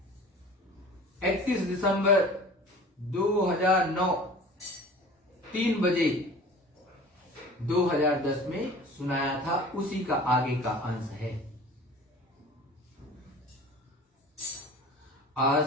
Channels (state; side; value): normal; both; correlation 0.43